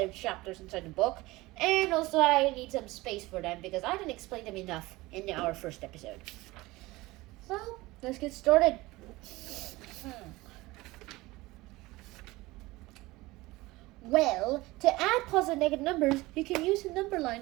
of chapters inside the book, and also I need some space for them because I didn't explain them enough in our first episode. So let's get started. Well, to add positive and negative numbers, you can use a number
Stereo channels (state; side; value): quieter; left; 20.3 dB